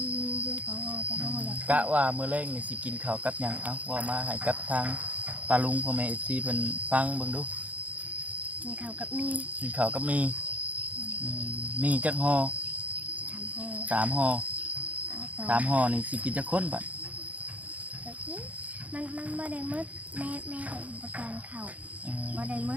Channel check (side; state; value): left; late; 0.071 ms